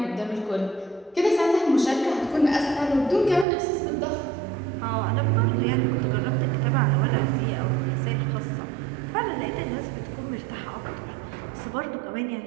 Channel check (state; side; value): drops out; left; at 3.5 s